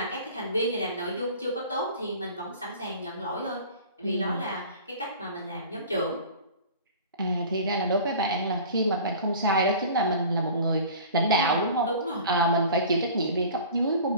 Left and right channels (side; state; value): both; inverted; correlation -0.42